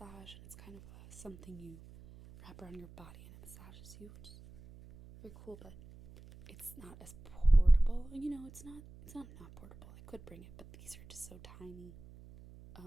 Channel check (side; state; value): right; noise; hum, 19 dB below the sound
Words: and it's kind of something you wrap around your body and it massages you, which is very cool, but it's not as portable. You know, it's not portable. I could bring it, but these are just so tiny.